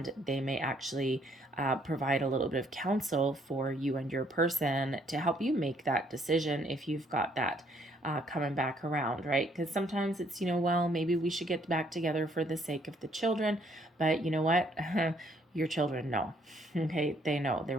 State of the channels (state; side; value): normal; both; correlation 0.67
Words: they may actually provide a little bit of counsel for you and your person to help you make that decision if you've got that coming back around, right? Because sometimes it's, well, maybe we should get back together for the sake of the children, but you know what? Your children know. Okay, they know.